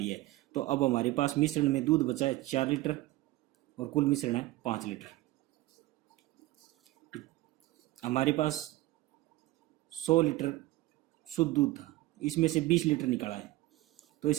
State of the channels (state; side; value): quieter; left; 18.1 dB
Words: है। तो अब हमारे पास मिश्रण में दूध बचा है 4 लीटर और कुल मिश्रण है 5 लीटर। हमारे पास 100 लीटर शुद्ध दूध था, इसमें से 20 लीटर निकाला है। तो